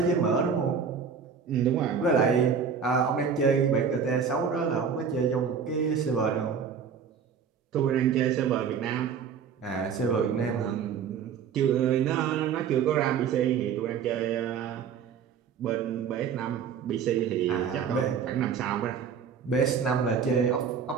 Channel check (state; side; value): quieter; left; 6.8 dB